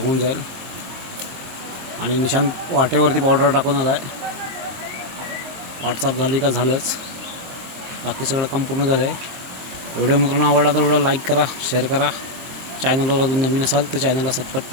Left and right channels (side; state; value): left; late; 23 ms